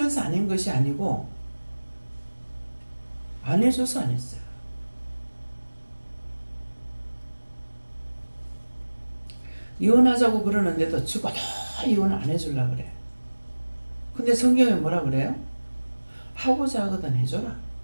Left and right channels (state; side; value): inverted; both; correlation -1.00